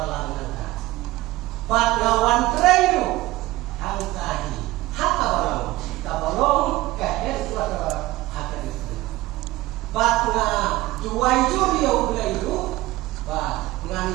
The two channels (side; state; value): left; quieter; 18.4 dB